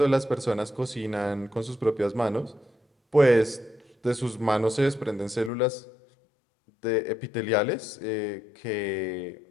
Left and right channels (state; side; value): drops out; right; at 5.5 s